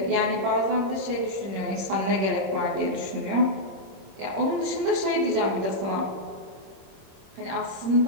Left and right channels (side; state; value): left; late; 26 ms